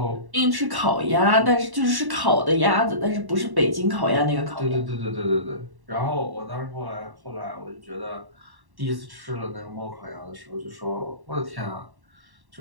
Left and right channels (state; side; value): late; left; 1.1 ms